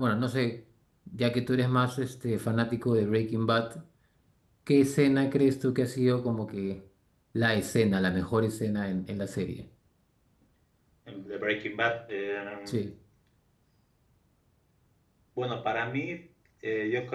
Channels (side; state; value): both; identical; correlation 1.00